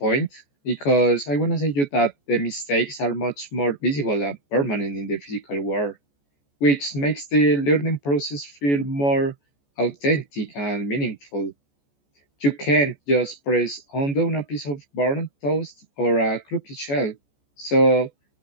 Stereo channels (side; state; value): right; late; 14 ms